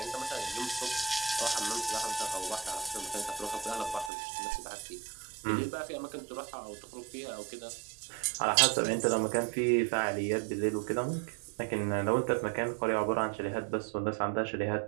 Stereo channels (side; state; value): left; drops out; at 4.1 s